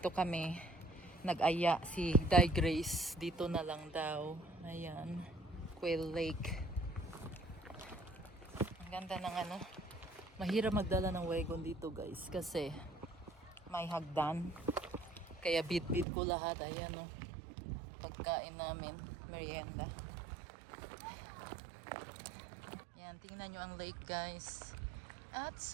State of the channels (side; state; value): left; drops out; at 16.1 s